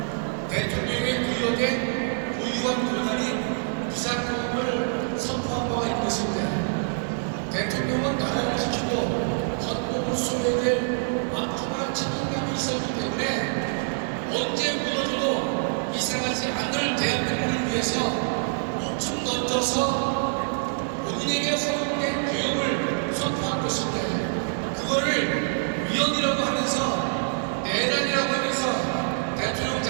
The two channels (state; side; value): silent; left; digital silence